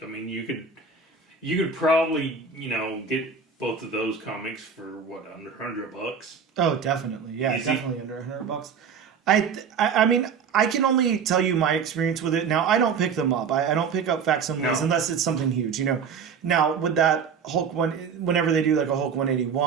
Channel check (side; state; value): left; quieter; 6.2 dB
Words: You could probably get both of those comics for under $100. Oh, definitely. Yeah, easy. Definitely under $100. I can only tell you my experience with it. Now, I don't pick them up. I don't pick up facsimiles unless it's something huge, Now, with that Hulk one, whenever they do like a Hulk